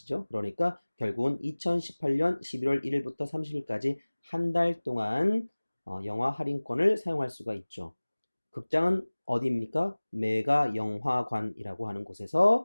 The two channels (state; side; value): inverted; both; correlation -1.00